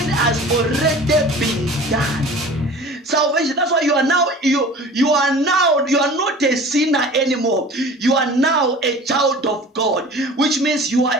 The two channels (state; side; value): normal; both; correlation 0.42